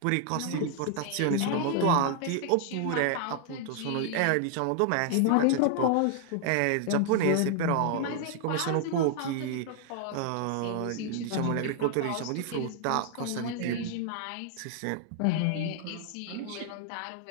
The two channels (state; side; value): different; both; correlation 0.00